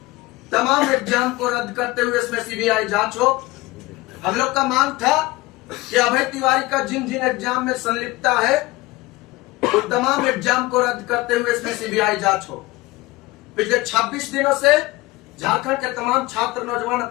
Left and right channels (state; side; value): quieter; right; 20.7 dB